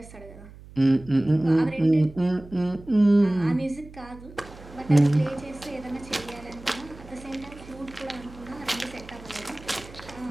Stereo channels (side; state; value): right; noise; hum, 19 dB below the sound